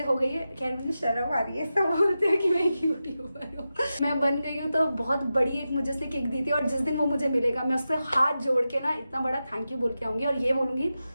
हो गई है। खैर मुझे शर्म आ रही है, सब बोलते हैं कि मैं एक यूट्यूबर हूँ, मैं बन गई हूँ। तो बहुत बड़ी एक मुझे उसने किक दी थी, और जिस दिन वो मुझे मिलेगा मैं उससे हाथ जोड़ के ना इतना बड़ा थैंक यू बोल के आऊंगी, और ये बोलूंगी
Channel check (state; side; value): inverted; both; correlation -0.92